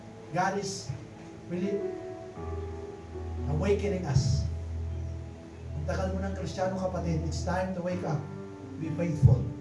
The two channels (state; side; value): identical; both; correlation 1.00